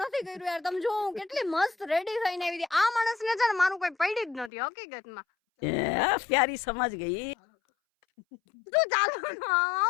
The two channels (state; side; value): drops out; right; at 4.5 s